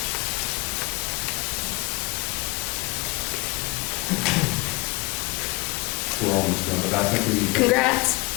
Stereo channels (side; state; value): right; quieter; 25.9 dB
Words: We're almost done, but I think we need to. Congrats.